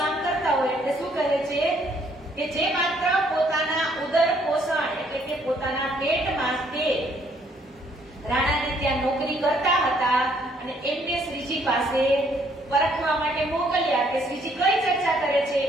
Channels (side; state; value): both; normal; correlation 0.66